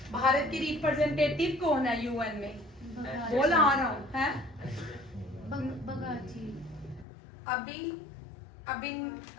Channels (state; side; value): drops out; right; at 7.1 s